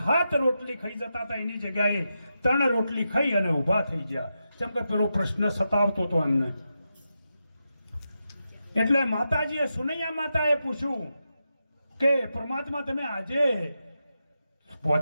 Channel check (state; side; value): inverted; both; correlation -0.87